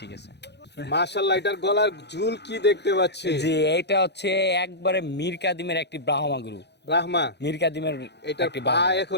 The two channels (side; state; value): right; late; 0.50 ms